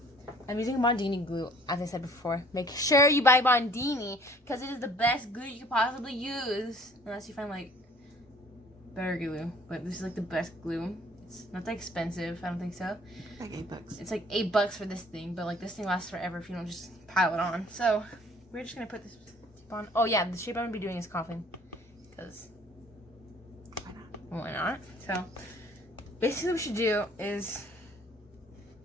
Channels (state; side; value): normal; both; correlation 0.55